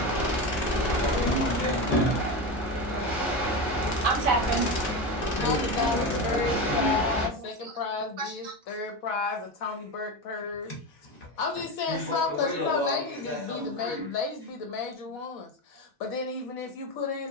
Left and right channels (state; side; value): normal; both; correlation 0.19